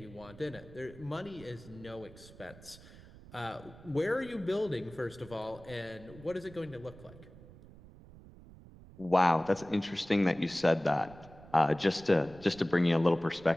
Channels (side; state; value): right; noise; rumble, 20 dB below the sound